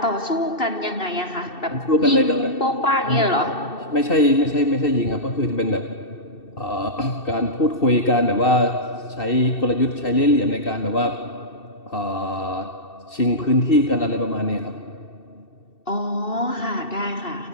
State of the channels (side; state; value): right; late; 2.7 ms